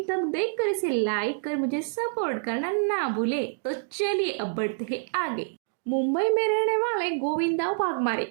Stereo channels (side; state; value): left; silent; digital silence